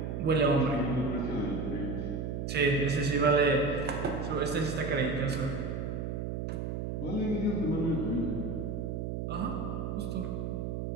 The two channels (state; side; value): noise; right; hum, 3 dB below the sound